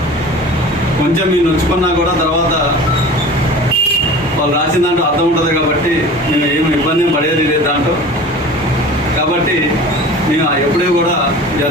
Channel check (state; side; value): normal; both; correlation 0.39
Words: కొంచెం మీరు నొచ్చుకున్నా కూడా తర్వాత వాళ్ళు రాసిన దాంట్లో అర్థం ఉంటుంది కాబట్టి మేము ఏమి ఇబ్బంది పడేది లేదు దాంట్లో. కాబట్టి మేము ఎప్పుడూ కూడా